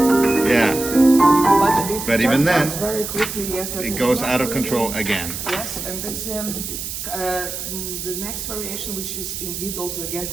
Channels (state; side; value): noise; right; hiss, 6 dB below the sound